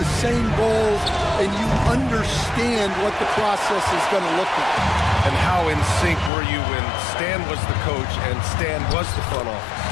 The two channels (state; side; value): drops out; right; at 6.3 s